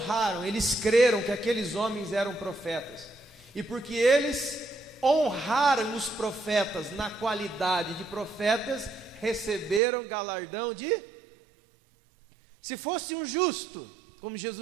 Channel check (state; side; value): drops out; left; at 9.8 s